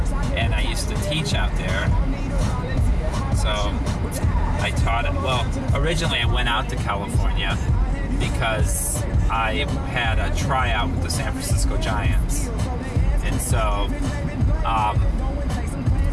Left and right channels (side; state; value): both; identical; correlation 1.00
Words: and I used to teach out there. So I taught it. Well, originally I went out to California because I had a tryout with the San Francisco Giants. And so